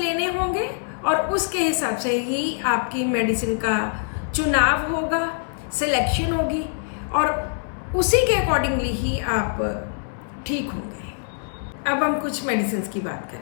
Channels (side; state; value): right; silent; 63 dB below the other